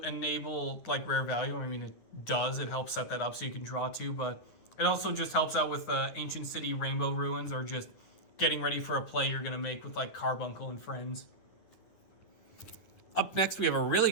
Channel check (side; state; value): right; late; 9.9 ms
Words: enable like rare value. I mean, it does. It helps set that up so you can draw 2, but it also just helps out with Ancient City Rainbow Ruins, or just getting ready for a play you're going to make with like Carbuncle and friends. Up next, we have a really